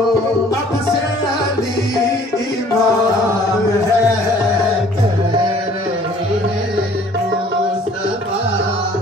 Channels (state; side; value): normal; both; correlation 0.55